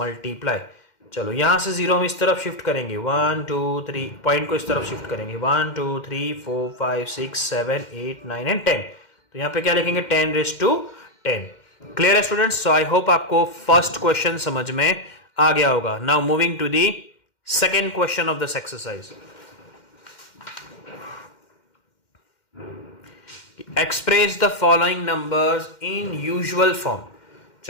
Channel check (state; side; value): late; right; 2.1 ms